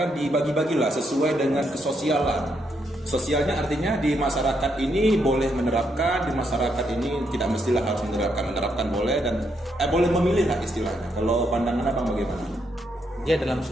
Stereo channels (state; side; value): normal; both; correlation 0.77